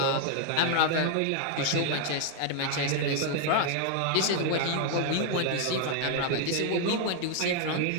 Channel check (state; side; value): different; both; correlation 0.00